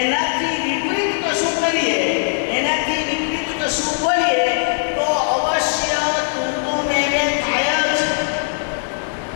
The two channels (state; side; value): silent; right; 60 dB below the other